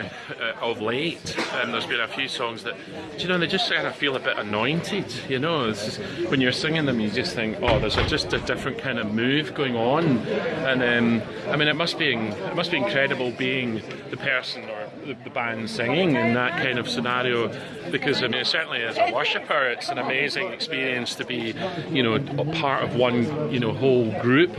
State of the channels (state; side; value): identical; both; correlation 1.00